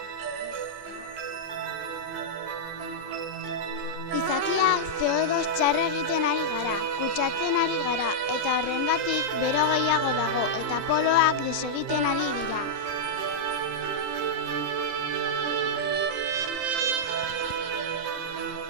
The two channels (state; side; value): late; left; 17 ms